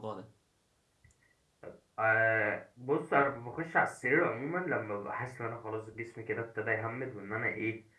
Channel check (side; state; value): both; identical; correlation 1.00